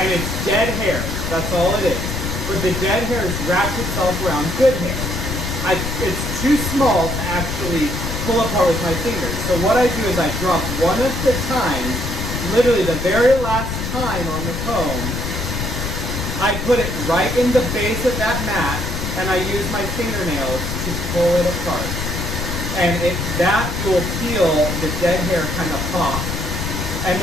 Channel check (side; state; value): left; noise; rumble, 3 dB below the sound